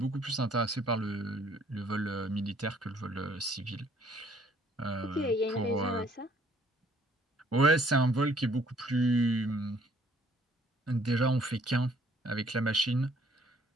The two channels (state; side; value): normal; both; correlation 0.62